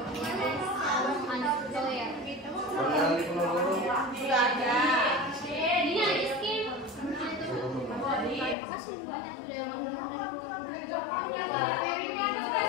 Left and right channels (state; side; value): drops out; right; at 8.6 s